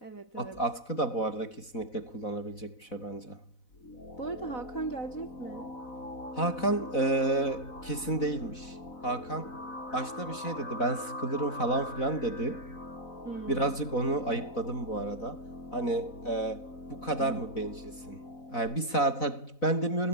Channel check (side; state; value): right; late; 4.0 ms